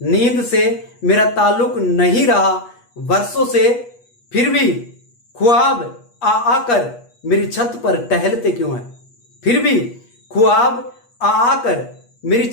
नींद से मेरा ताल्लुक नहीं रहा वर्षों से, फिर भी ख्वाब आ आकर मेरी छत पर टहलते क्यों हैं? फिर भी ख्वाब आ आकर मेरी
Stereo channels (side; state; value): right; late; 8.3 ms